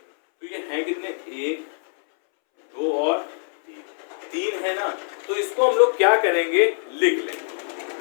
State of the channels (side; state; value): right; silent; 63 dB below the other